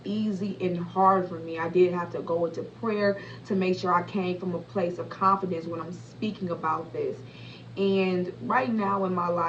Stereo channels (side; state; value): both; identical; correlation 1.00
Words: easy and hard for me. I did have to go into prayer to make sure I came from a place of confidence when I'm speaking about this. And right now in my